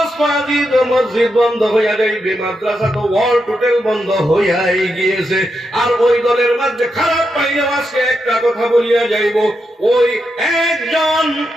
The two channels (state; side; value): normal; both; correlation 0.85